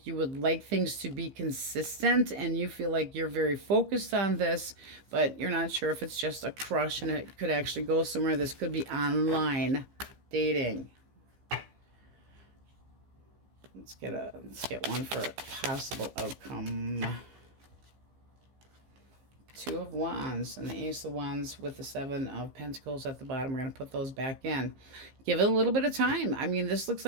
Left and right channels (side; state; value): left; late; 15 ms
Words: you would like things to be consistent, and you feel like you're very focused on this, but you're not sure if it's just a crush and it could actually go somewhere. This could be online dating. Let's get one for a possible outcome. Two of Wands and the Ace of Wands with the Seven of Pentacles at the bottom. We're going to put those back in. Give it a little bit of time. I mean, this looks